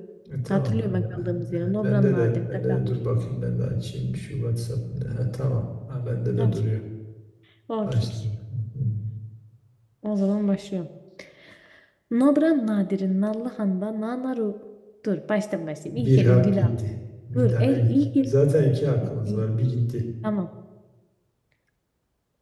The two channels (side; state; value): both; identical; correlation 1.00